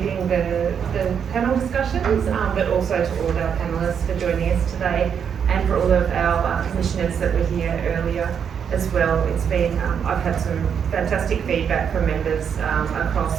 the panel discussions, but also to all of our panellists for joining us today, and for all of our commissioners that were here earlier as well. It's been, I've had some fantastic feedback from members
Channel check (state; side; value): quieter; left; 7.5 dB